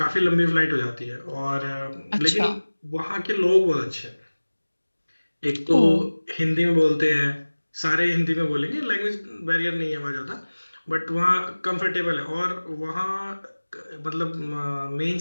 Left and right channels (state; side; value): inverted; both; correlation -1.00